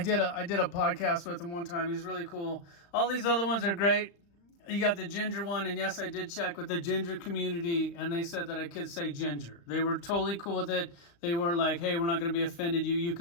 did a podcast with him one time. He's really cool. All these other ones are great. You got the ginger one, and yes, I did check with the ginger community, and they said that I could say ginger. They were totally cool with it. They weren't like, hey, we're not going to be offended. You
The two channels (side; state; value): right; late; 35 ms